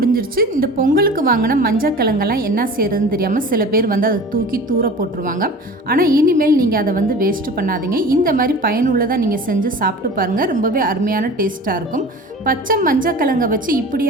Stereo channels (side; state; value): both; normal; correlation 0.38